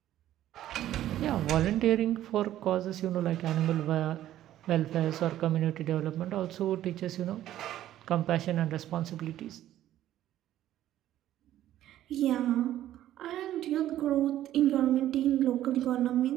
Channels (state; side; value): quieter; left; 12.8 dB